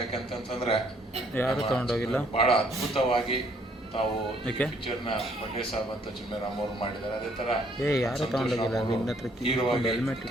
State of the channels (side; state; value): both; normal; correlation 0.65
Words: ಯಾಕಂತಂದ್ರೆ ಭಾಳ ಅದ್ಭುತವಾಗಿ ತಾವು ಪಿಕ್ಚರ್ನ ಬಂಡೆ ಸಾಬ್ ಅಂತ ಚಿನ್ಮಯರಾಮ್ ಅವರು ಮಾಡಿದ್ದಾರೆ. ಅದೇ ತರ